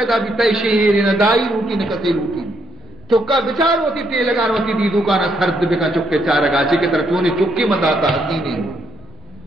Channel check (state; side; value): normal; both; correlation 0.75